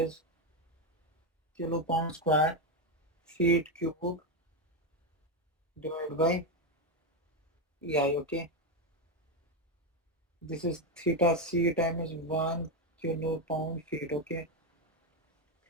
kilopound square feet cube divided by ei, okay. This is theta c times 1 kilopound feet, okay.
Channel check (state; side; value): normal; both; correlation 0.08